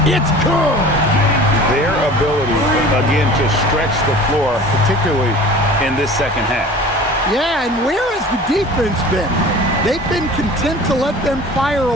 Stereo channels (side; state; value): both; normal; correlation 0.42